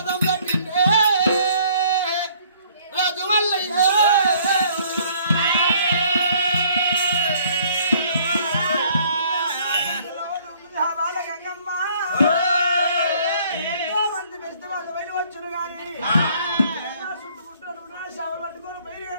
వచ్చును గాని చుట్టుముట్టు షావులు పట్టుకొని బయలు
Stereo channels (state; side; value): inverted; both; correlation -0.60